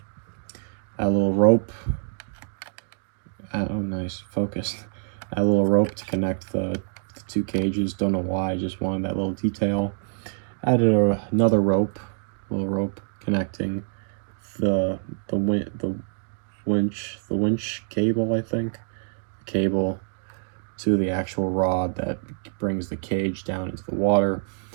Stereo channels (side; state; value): left; silent; digital silence